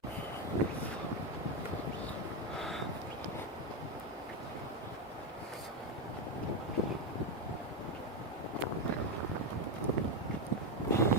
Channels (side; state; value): both; normal; correlation 0.07